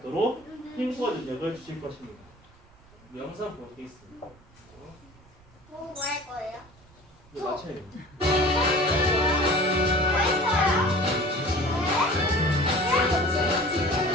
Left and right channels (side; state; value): right; noise; rumble, 27 dB below the sound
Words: 힘과 능력을 주실 것입니다. 영상 보겠습니다. 뭐 할 거예요? 이거 맞춰야 돼요.